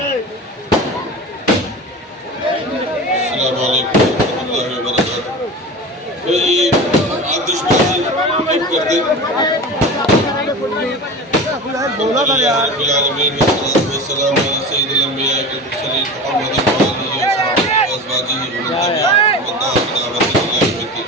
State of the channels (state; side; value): normal; both; correlation 0.31